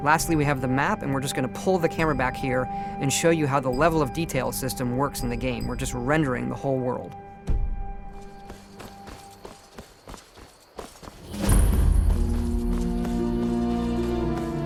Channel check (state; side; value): identical; both; correlation 1.00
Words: Lastly, we have the map, and we're just going to pull the camera back here and show you how the level of detail system works in the game. We're just rendering the whole world.